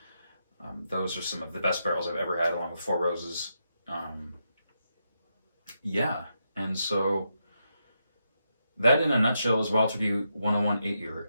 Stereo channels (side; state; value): both; inverted; correlation -0.83